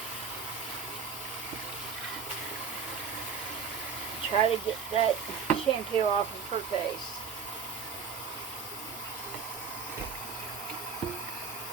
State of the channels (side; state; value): left; quieter; 5.9 dB